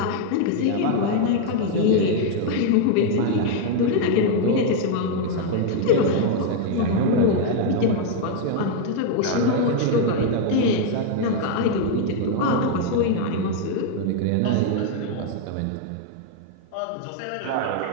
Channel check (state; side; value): different; both; correlation 0.00